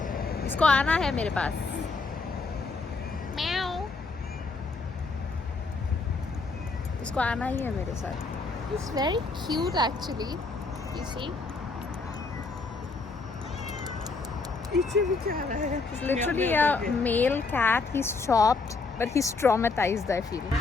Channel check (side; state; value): right; quieter; 4.0 dB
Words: इसको आना है मेरे पास. म्याऊ. इसको आना ही है मेरे साथ. It's very cute actually. You see? पीछे भी क्या रहा है? It's literally a male cat. He's chopped, but he's traumatized, I feel.